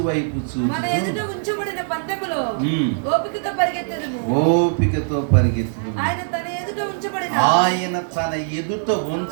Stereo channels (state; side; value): silent; left; 60 dB below the other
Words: వైపు మన ఎదుట చూచుచు ఉంచబడిన పందెములో మ్మ్. ఓపికతో పరిగెత్తెదము. ఓపికతో పరిగెత్తును. ఆయన తన ఎదుట ఉంచబడిన ఆయన తన ఎదుట